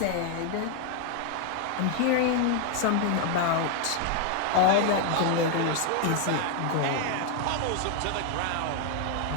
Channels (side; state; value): both; different; correlation 0.00